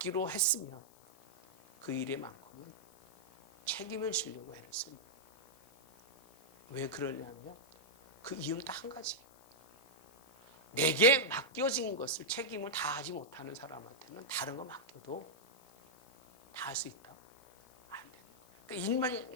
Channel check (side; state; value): left; noise; hiss, 27 dB below the sound